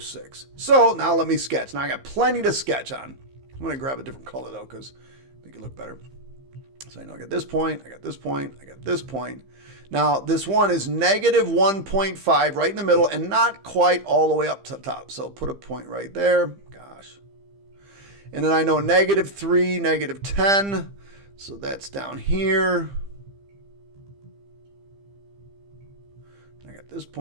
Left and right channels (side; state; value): left; late; 15 ms